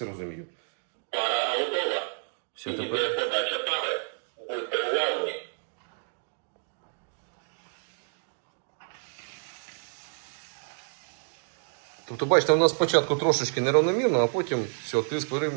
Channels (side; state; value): left; silent; 58 dB below the other